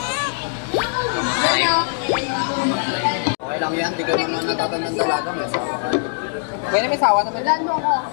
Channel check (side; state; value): right; silent; digital silence